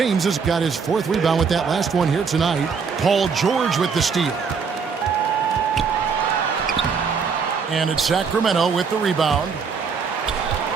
has got his 4th rebound with that last one here tonight. Paul George with the steal. And it's Sacramento with the rebound.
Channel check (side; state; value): left; quieter; 5.7 dB